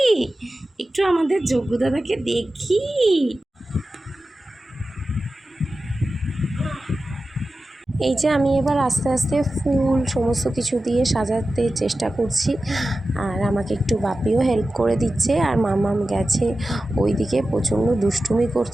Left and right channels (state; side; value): normal; both; correlation 0.94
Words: একটু আমাদের যজ্ঞ দাদাকে দেখি। এই যে আমি এবার আস্তে আস্তে ফুল সমস্ত কিছু দিয়ে সাজাতে চেষ্টা করছি, আর আমাকে একটু বাপিও হেল্প করে দিচ্ছে। আর মামাম গেছে ওইদিকে, প্রচণ্ড দুষ্টুমি